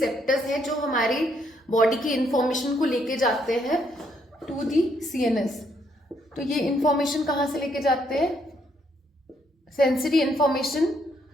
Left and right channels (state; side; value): normal; both; correlation 0.72